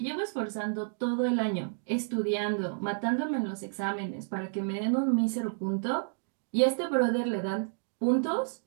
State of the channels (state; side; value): silent; left; digital silence